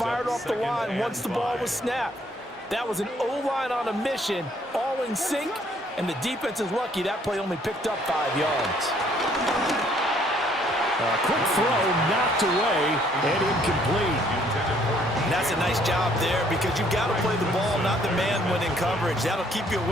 off the line once the ball was snapped. That was an O-line on a mission, all in sync, and the defense is lucky that play only picked up 5 yards. A quick throw knocked away and incomplete. And that's a nice job there because you've got to play the ball, not the man when in coverage. That'll keep you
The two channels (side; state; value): both; normal; correlation 0.64